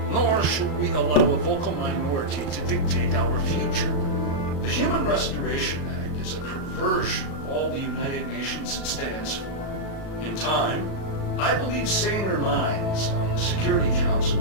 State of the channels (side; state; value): right; late; 36 ms